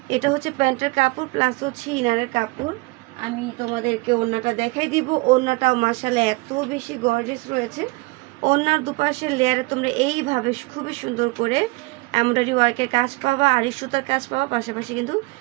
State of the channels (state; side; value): quieter; left; 24.8 dB